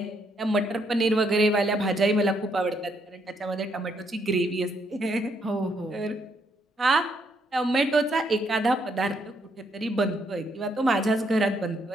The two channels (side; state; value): both; normal; correlation 0.74